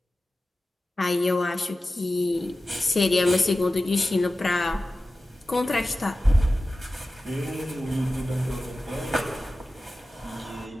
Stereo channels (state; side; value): normal; both; correlation 0.95